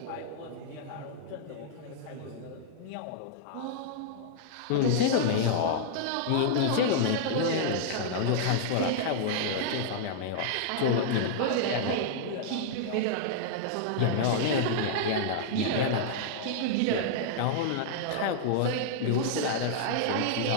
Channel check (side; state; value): both; different; correlation -0.01